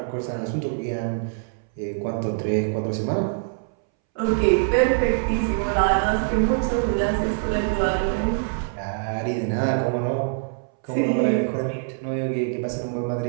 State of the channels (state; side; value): silent; left; 63 dB below the other